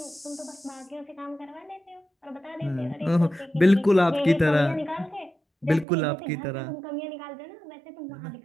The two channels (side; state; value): left; drops out; at 5.9 s